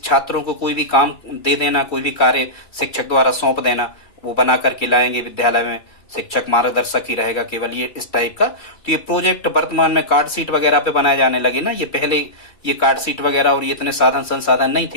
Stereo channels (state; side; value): late; right; 2.6 ms